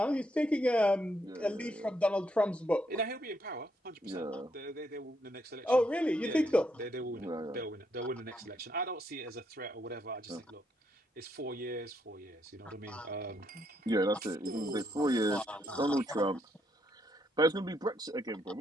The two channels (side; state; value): both; normal; correlation 0.75